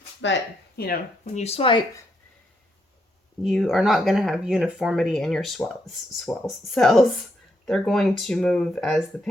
But, you know, when you swipe, you are not going to have uniformity in your cells. They're going to move as the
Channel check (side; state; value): both; normal; correlation 0.77